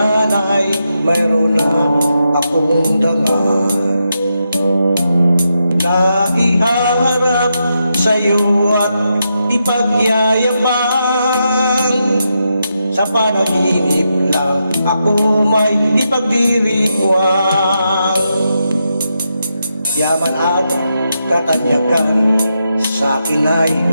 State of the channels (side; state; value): both; inverted; correlation -0.84